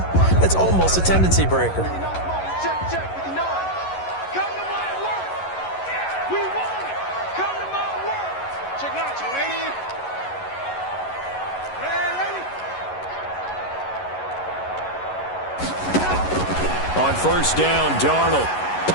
that's almost a tendency breaker. On first down, Darnold.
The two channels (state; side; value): late; right; 11 ms